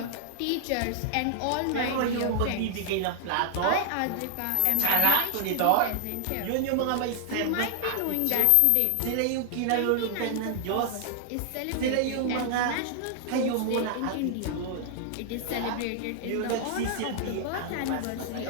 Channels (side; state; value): both; different; correlation 0.00